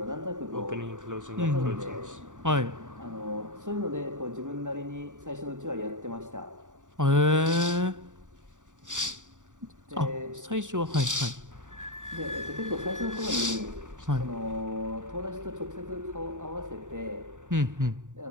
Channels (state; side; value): late; left; 0.86 ms